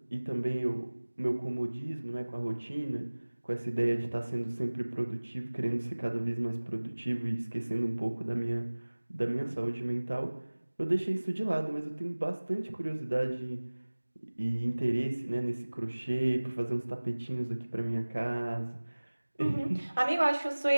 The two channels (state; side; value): inverted; both; correlation -1.00